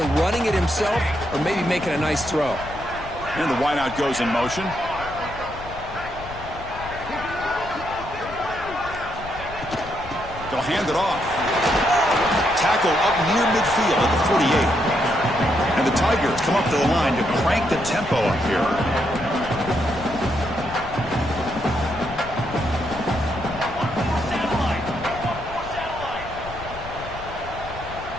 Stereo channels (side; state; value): left; noise; rumble, 14 dB below the sound